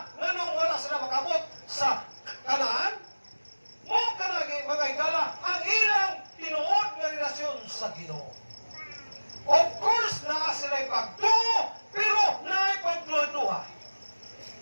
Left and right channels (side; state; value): both; inverted; correlation -1.00